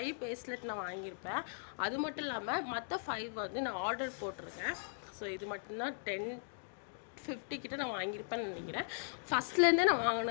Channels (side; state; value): right; silent; digital silence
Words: பேஸ்லெட் நான் வாங்கியிருப்பேன். அது மட்டும் இல்லாமல் மற்ற 5 வந்து நான் ஆர்டர் போட்டிருக்கேன். ஸோ இது மட்டும்தான் 10-50 கிட்ட நான் வாங்கியிருப்பேன்னு நினைக்கிறேன். ஃபஸ்ட்லேருந்தே நான்